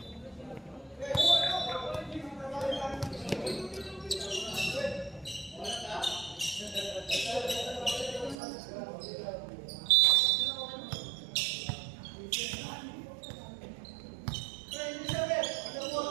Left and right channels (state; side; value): drops out; left; at 8.3 s